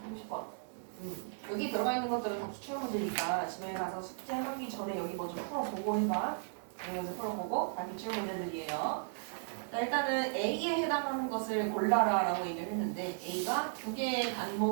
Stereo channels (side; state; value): left; silent; 54 dB below the other